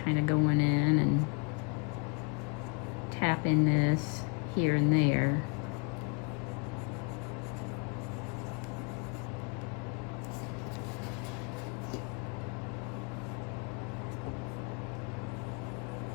kind of going in and tapping this here and there.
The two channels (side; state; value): right; quieter; 35.4 dB